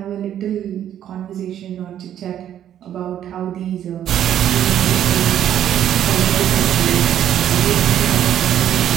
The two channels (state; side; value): quieter; left; 10.6 dB